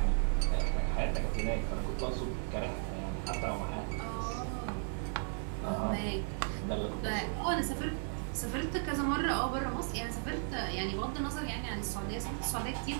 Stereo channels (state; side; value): silent; left; digital silence